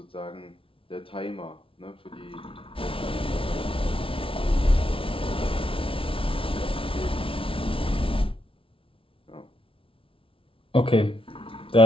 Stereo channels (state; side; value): late; right; 0.26 ms